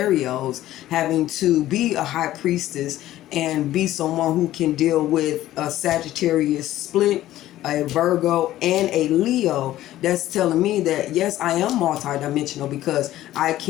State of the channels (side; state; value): right; quieter; 14.3 dB